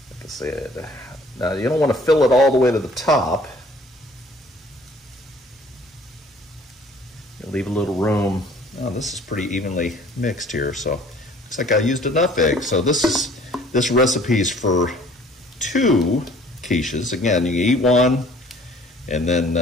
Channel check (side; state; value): both; normal; correlation 0.54